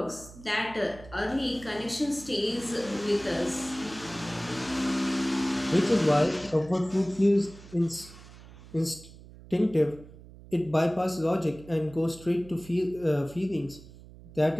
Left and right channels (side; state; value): right; noise; hum, 19 dB below the sound